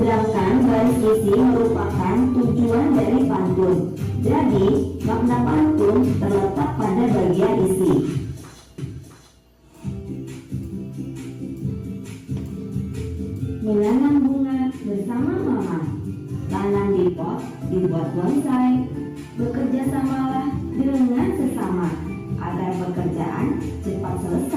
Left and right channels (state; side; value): identical; both; correlation 1.00